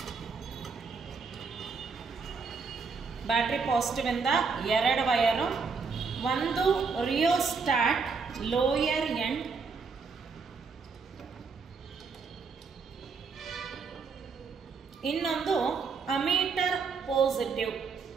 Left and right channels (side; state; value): left; quieter; 5.0 dB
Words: ಬ್ಯಾಟರಿ ಪಾಸಿಟಿವ್ ಇಂದ ಎರಡು ವೈರು, ಒಂದು ರಿಯೋಸ್ಟಾಟ್ ಲೋಯರ್ ಎಂಡ್, ಇನ್ನೊಂದು ammeter positive.